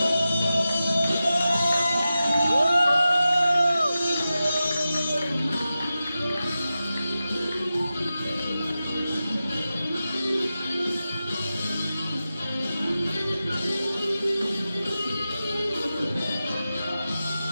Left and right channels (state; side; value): inverted; both; correlation -0.93